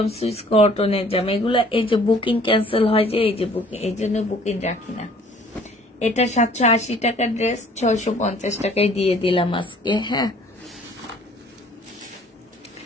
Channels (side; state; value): both; normal; correlation 0.55